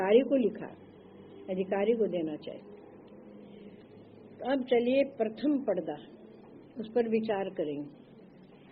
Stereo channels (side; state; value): both; identical; correlation 1.00